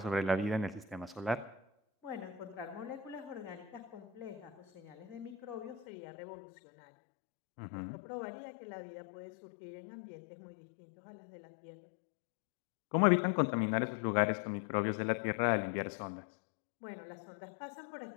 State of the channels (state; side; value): drops out; right; at 5.9 s